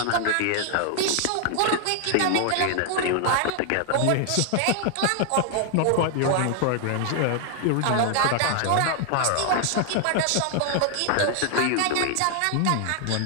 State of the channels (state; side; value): different; both; correlation 0.00